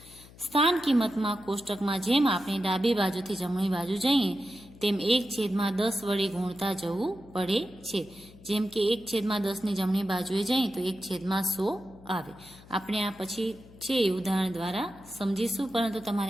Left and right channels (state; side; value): noise; left; hum, 21 dB below the sound